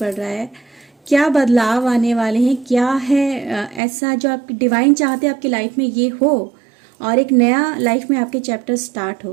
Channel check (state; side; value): drops out; left; at 3.8 s